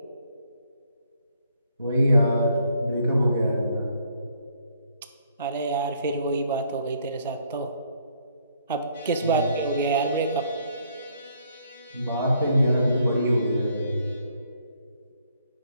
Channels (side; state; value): both; inverted; correlation -0.68